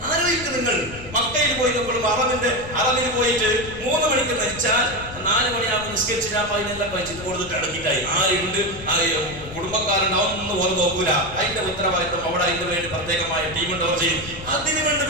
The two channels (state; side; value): noise; left; rumble, 14 dB below the sound